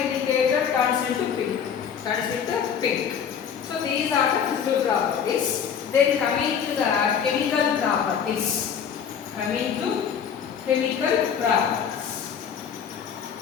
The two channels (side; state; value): right; quieter; 7.6 dB